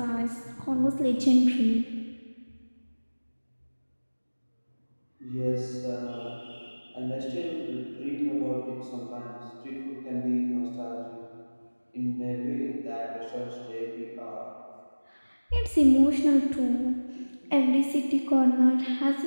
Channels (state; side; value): inverted; both; correlation -1.00